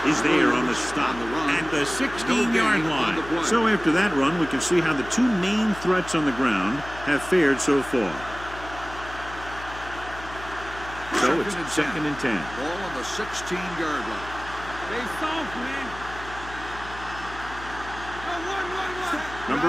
is there on the stop at the 16-yard line. So after that run, we can see how the two main threats on the ground have fared so far. So it's second and 10. Ball on the 16-yard line. Stay soft, man. One.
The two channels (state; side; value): noise; left; hum, 14 dB below the sound